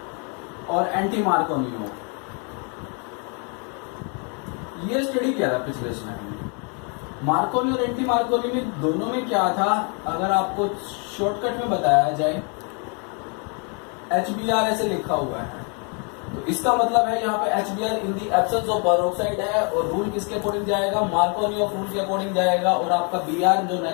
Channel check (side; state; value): right; quieter; 36.9 dB